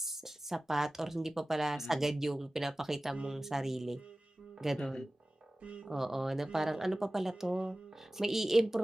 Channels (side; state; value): both; normal; correlation 0.97